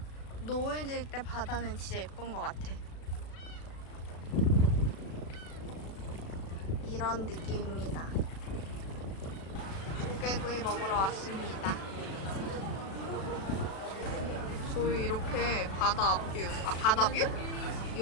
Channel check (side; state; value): right; late; 36 ms